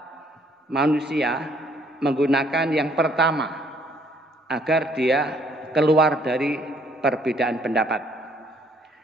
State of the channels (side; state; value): both; normal; correlation 0.64